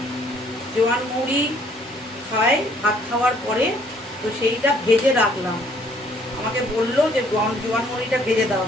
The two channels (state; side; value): normal; both; correlation 0.63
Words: জোয়ান মুড়ি খায় ভাত খাওয়ার পরে, তো সেইটা ভেজে রাখলাম। আমাকে বললো যে জোয়ান মুড়িটা ভেজে দাও।